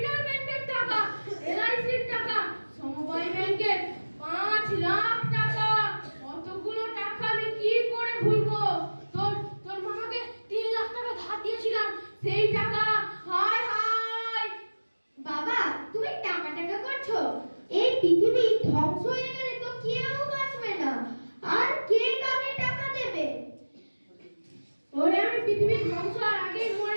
টাকা, এলআইসির টাকা, সমবায় ব্যাংকের 5 লাখ টাকা। কতগুলো টাকা আমি কি করে ভুলবো? তোর তোর মামাকে 3 লাখ টাকা ধার দিয়েছিলাম, সেই টাকা। হায় হায়! বাবা, তুমি টাকা টাকা করছো? এই পৃথিবী ধ্বংস হয়ে গেলে তো কেউ বাঁচবে না।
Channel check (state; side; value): inverted; both; correlation -1.00